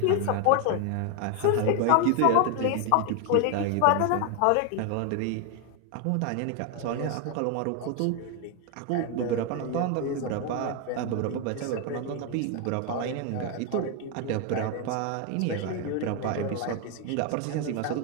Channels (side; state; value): both; different; correlation 0.01